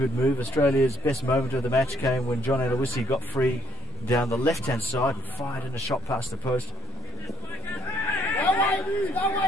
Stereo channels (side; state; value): both; normal; correlation 0.64